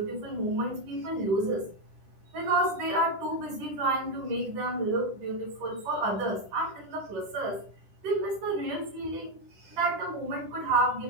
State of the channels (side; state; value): left; late; 10 ms